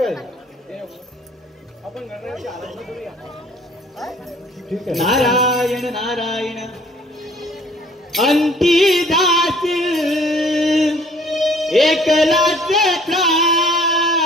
आहे, आपण गणरायाची आराधना करूया. ठीक आहे. नारायण नारायण. अंतिदास एकलाच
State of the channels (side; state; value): both; normal; correlation 0.56